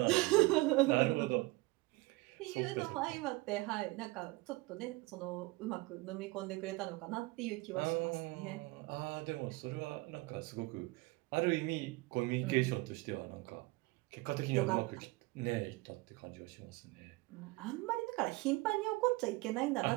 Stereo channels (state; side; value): quieter; left; 22.6 dB